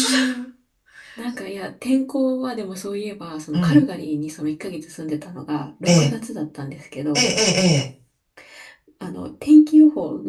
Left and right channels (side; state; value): both; identical; correlation 1.00